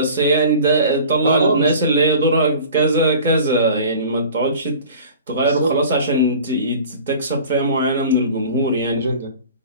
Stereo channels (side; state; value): both; inverted; correlation -0.43